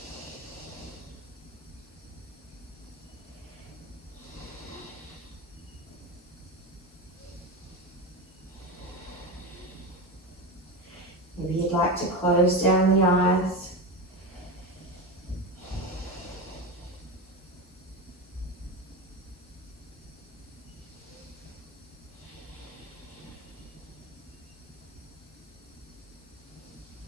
Maybe you'd like to close down the eyes.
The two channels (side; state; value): both; normal; correlation 0.20